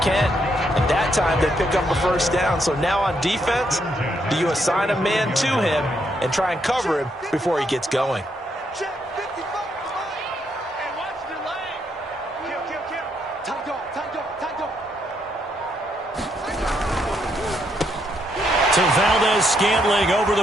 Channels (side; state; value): both; normal; correlation 0.76